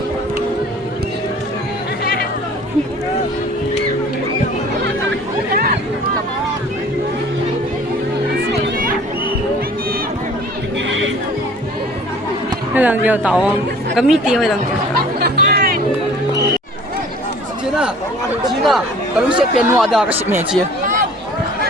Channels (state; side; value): normal; both; correlation 0.49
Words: Cái lần vô tàu có mít tiêu hay lần vô. 把路线变挪的个面积。